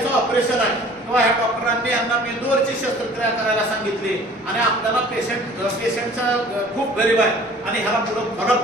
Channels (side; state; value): both; normal; correlation 0.49